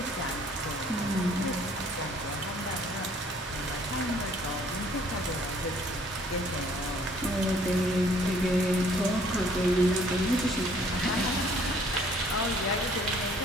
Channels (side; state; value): both; normal; correlation 0.59